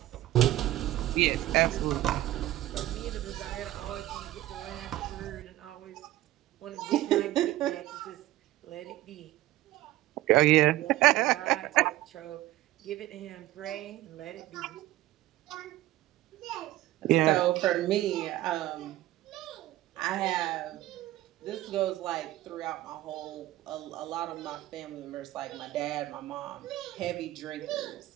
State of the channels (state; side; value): quieter; left; 15.7 dB